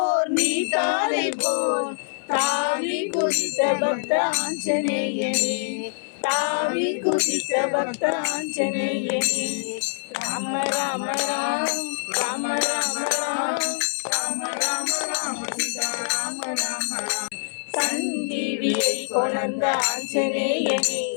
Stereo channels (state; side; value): silent; right; 62 dB below the other